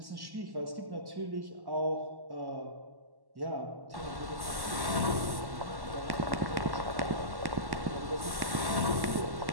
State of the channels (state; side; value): late; left; 1.1 ms